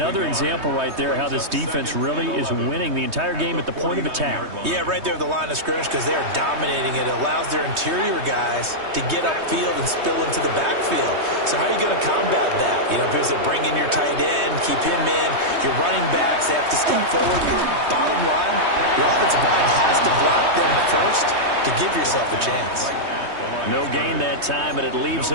example right there how this defense really is winning the entire game at the point of attack. Yeah, right there at the line of scrimmage because they are dominating it. It allows their interior guys to get upfield and spill into the backfield. So how are you going to combat that? You know, if it was to bring in your tight end, keep him in, your running backs, they have to step forward. Bottom line, your offensive line has to block them first to give yourself a chance. No gain that time, and it leaves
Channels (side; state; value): left; late; 3.2 ms